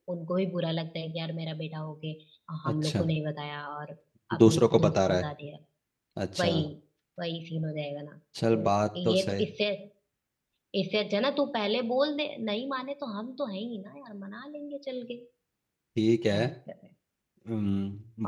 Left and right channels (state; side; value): identical; both; correlation 1.00